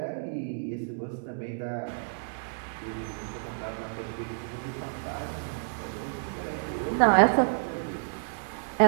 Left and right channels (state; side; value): silent; left; digital silence